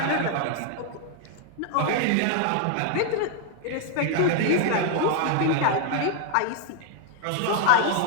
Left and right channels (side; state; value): both; different; correlation 0.00